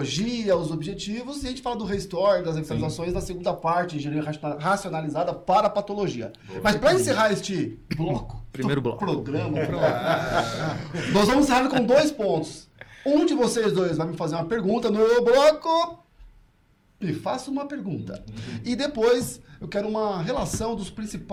os objetivos, e a gente fala do restore, das revitalizações na segunda parte, engenharia racionalizada para a patologia. Mas para encerrar este bloco, Primeiro bloco. programa, nós vamos encerrar com 2 pontos. Um de vocês 2 vai me fazer uma pergunta no bloco. Me faça uma pergunta. E depois eu quero uma relação dos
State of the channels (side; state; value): both; identical; correlation 1.00